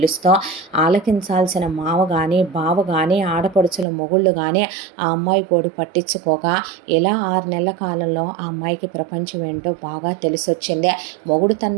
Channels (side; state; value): left; drops out; at 3.9 s